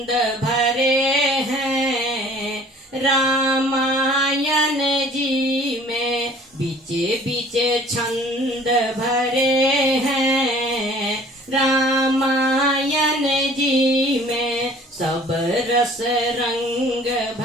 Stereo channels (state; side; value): normal; both; correlation 0.51